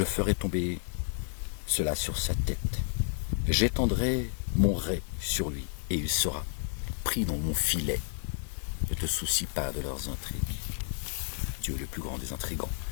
ferai tomber cela sur sa tête. J'étendrai mon rai sur lui et il sera pris dans mon filet. Ne te soucie pas de leurs intrigues. Dieu est le plus grand des intrigants.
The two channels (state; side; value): silent; right; digital silence